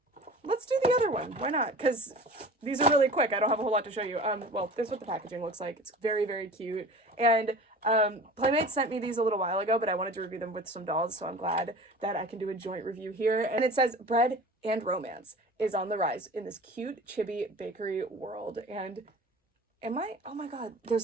let's do the other one. Why not? Because these are really quick. I don't have a whole lot to show you. Well, this is what the packaging looks like. It's very, very cute. And Playmates sent me these a little while ago, but I wanted to review them with some dolls, so I'm glad that I can do a joint review here. And it says bread and romance is on the rise in this cute chibi bakery world. And oh my god,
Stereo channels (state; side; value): normal; both; correlation 0.39